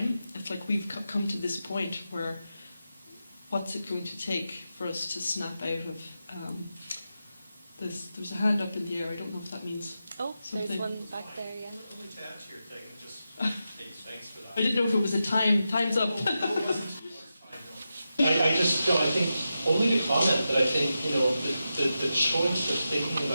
It's like we've come to this point where what's it going to take for us to snap out of there's a hand up in the air, I don't know if that means something. There's one back there, yeah. Only to add to your thing, just thanks for that. I didn't know if it was a time's up. I think only to comment that I think, you know, the choice of thinking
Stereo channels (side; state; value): both; inverted; correlation -0.90